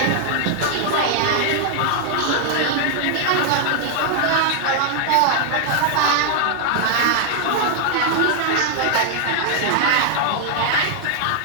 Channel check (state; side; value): different; both; correlation 0.00